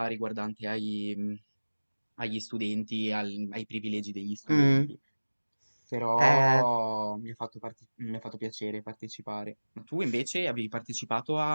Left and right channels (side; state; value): both; inverted; correlation -1.00